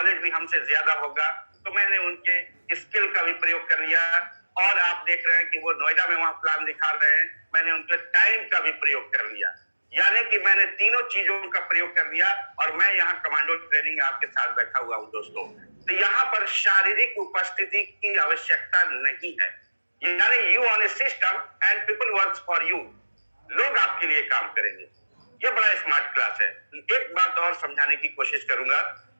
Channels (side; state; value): both; inverted; correlation -1.00